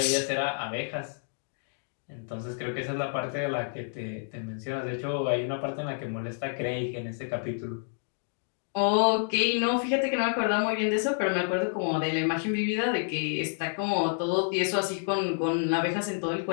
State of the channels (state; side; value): silent; right; digital silence